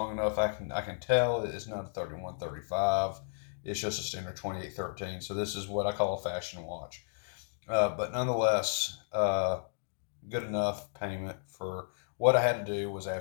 enough, I can tell it's not a 3135. It's just a standard 2813. So this is what I call a fashion watch. But nonetheless, good enough payment for what I had to do was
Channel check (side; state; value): right; silent; digital silence